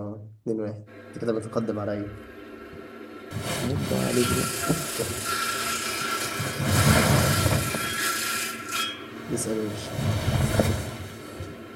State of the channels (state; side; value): identical; both; correlation 1.00